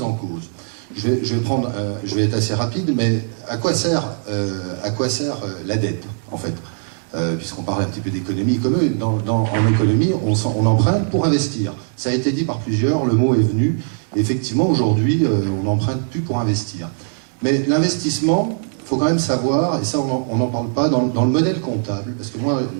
en cause. Je vais être assez rapide, mais à quoi sert la dette, en fait, puisqu'on parle un petit peu d'économie. En économie, on emprunte pour investir. Ça a été dit par plusieurs, le mot est venu. Effectivement, aujourd'hui, on n'emprunte plus pour investir. Mais l'investissement, il faut quand même savoir, et ça on n'en parle pas, dans le modèle comptable, parce que moi,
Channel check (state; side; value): silent; left; 66 dB below the other